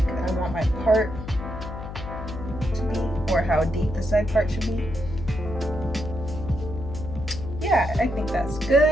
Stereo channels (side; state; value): left; noise; hum, 9 dB below the sound